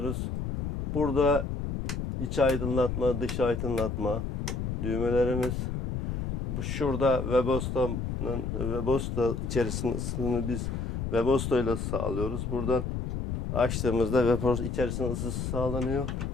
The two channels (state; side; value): noise; left; rumble, 3 dB below the sound